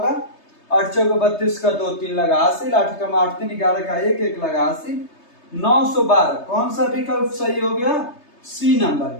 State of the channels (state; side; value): late; right; 3.3 ms